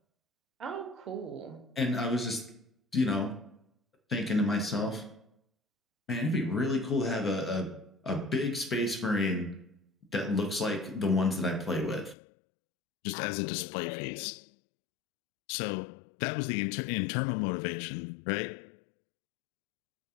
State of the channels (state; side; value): drops out; right; at 12.2 s